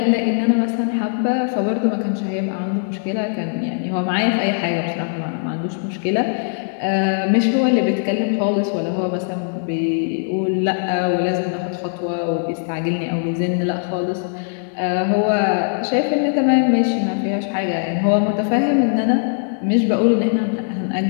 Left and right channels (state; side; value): silent; right; digital silence